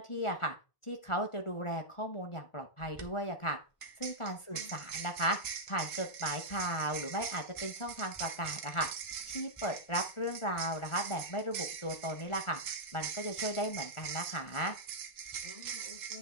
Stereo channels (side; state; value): right; late; 1.4 ms